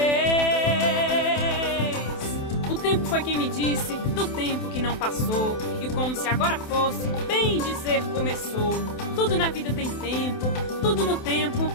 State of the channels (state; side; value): late; right; 27 ms